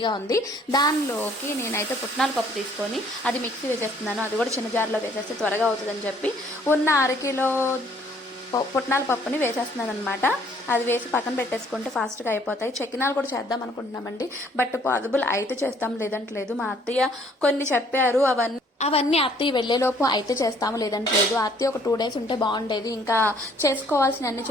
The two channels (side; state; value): both; normal; correlation 0.61